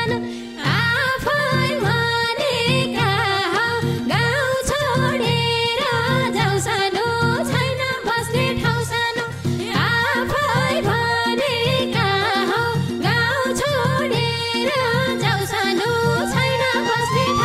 आफै भनेका हौ गाउँ छोडेर जाऊ सानो छैन बस्ने ठाउँ सानो आफै भने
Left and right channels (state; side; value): identical; both; correlation 1.00